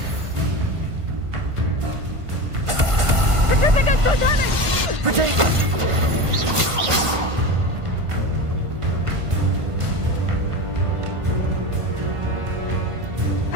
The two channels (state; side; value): late; left; 1.5 ms